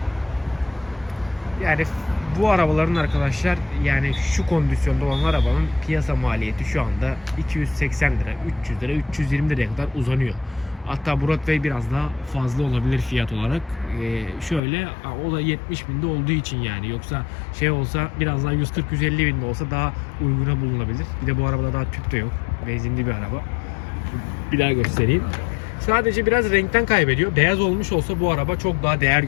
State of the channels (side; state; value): right; drops out; at 14.6 s